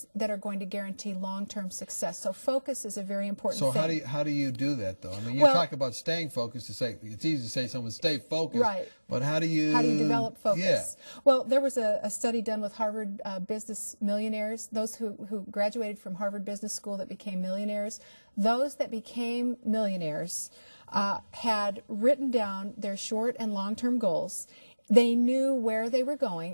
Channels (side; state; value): both; inverted; correlation -1.00